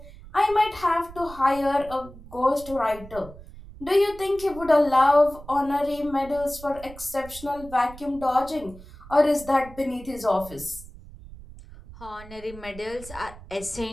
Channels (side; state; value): right; noise; rumble, 17 dB below the sound